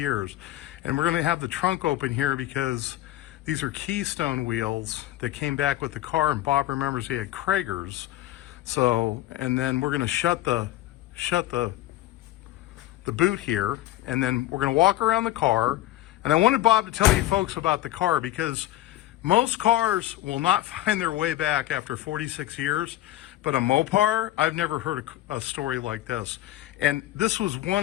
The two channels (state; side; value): quieter; right; 15.1 dB